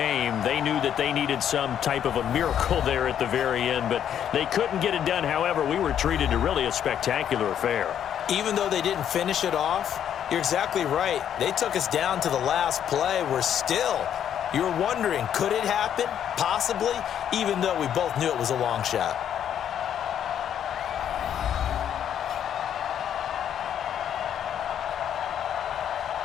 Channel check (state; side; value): quieter; right; 9.5 dB